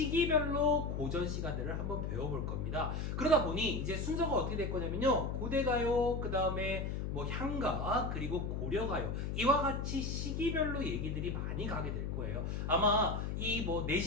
고전시가들을 한번 배워볼 겁니다. 그러다 보니 이제 순서가 어떻게 될 거냐면요, 고대가요, 그 다음에 뭐 향가, 그리고 고려가요, 이와 같이 시기별로 얘기들이 많이 가게 될 거예요. 아마 이 뭐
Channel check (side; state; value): left; noise; hum, 2 dB below the sound